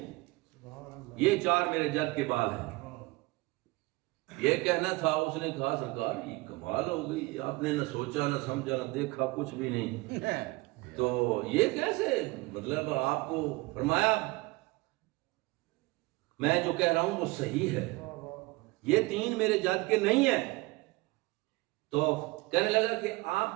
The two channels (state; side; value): quieter; left; 23.0 dB